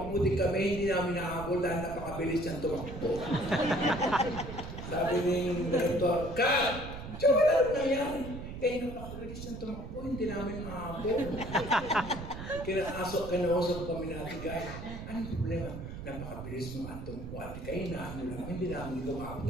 din kami, hindi namin nahabol dahil napakabilis niyang tumakbo. Sabi ng director, Kat! Diyo, wala rin nangyari. Eh, napakabilis niyang tumakbo, hindi namin nahabol. Kinausap kami na Ate Guy. Anong problema? Napakabilis mo ang tumakbo, Ate Guy, naano lang, hindi namin tumakbo,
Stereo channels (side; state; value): right; noise; rumble, 9 dB below the sound